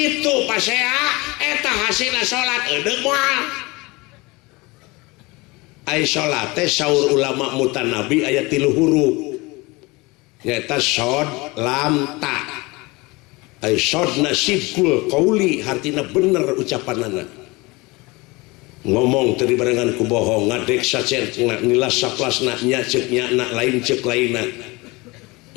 pasea eta hasilna salat eudeuh moal ai salat teh saur ulama mutanabi aya 3 huruf nyaeta shod lam ta ai shodna sidqul qauli hartina bener ucapanana ngomong teu dibarengan ku bohong ngadek sacetna nilas saplasna nya ceuk nya na lain ceuk lainna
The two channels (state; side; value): quieter; right; 24.1 dB